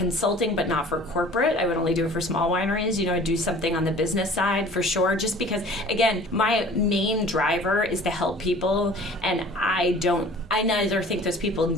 but not for corporate. I would only do it for small wineries. You know, I'd do something on the business side for sure, just because, again, my main driver is to help people, and I neither think those people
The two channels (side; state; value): both; normal; correlation 0.47